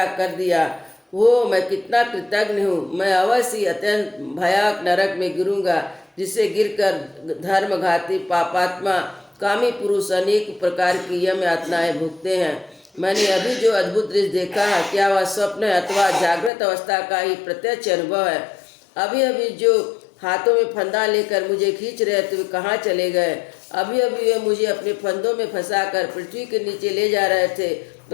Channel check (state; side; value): drops out; right; at 16.5 s